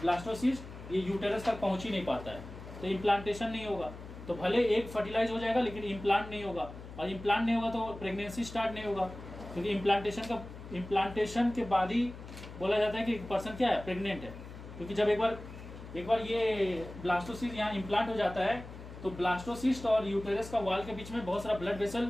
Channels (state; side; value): noise; left; hum, 13 dB below the sound